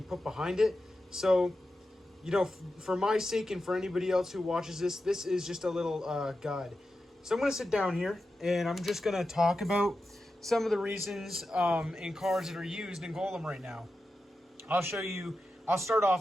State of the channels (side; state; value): both; normal; correlation 0.91